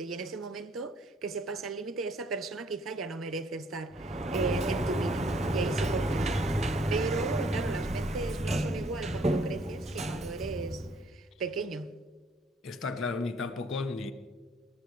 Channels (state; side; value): normal; both; correlation 0.62